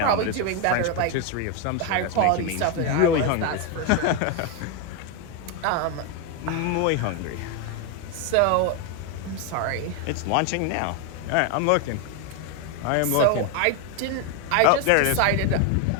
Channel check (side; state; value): both; different; correlation 0.01